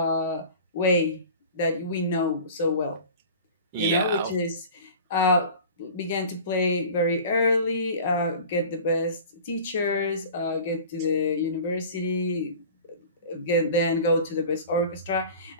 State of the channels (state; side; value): inverted; both; correlation -0.40